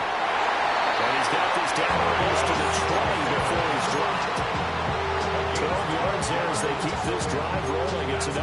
he's got this down almost to the 20 before he's dropped. 12 yards there as they keep this drive rolling. It's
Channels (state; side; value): identical; both; correlation 1.00